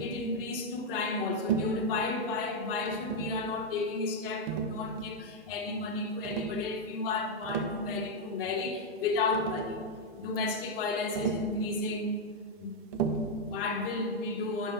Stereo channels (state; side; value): normal; both; correlation 0.00